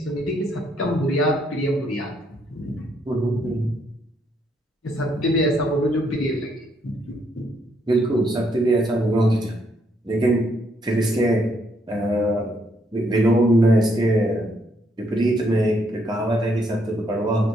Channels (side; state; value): both; normal; correlation 0.73